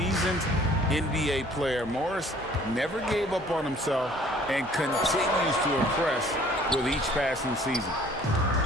NBA player, Morris never gave up on himself and continues to impress with each passing season.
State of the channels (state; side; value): normal; both; correlation 0.55